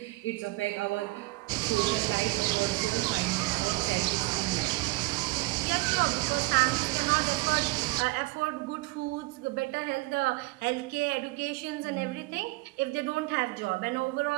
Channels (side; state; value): left; quieter; 22.8 dB